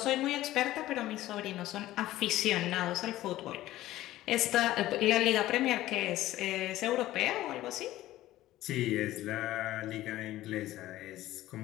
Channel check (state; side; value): quieter; right; 15.3 dB